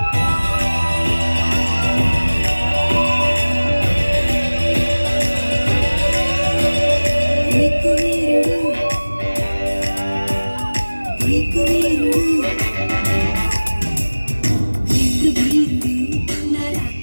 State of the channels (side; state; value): both; inverted; correlation -1.00